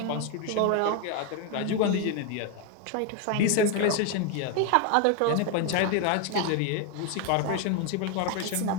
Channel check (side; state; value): both; different; correlation 0.01